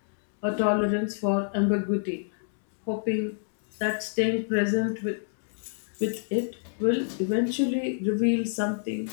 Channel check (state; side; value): silent; right; digital silence